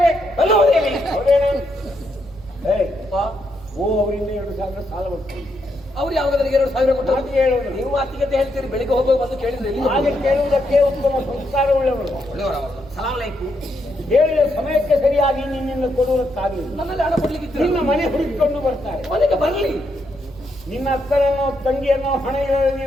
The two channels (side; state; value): right; noise; hum, 21 dB below the sound